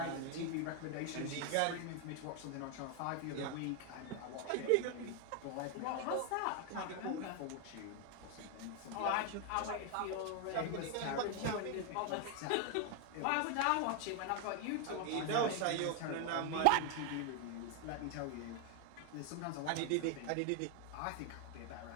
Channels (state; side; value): different; both; correlation 0.01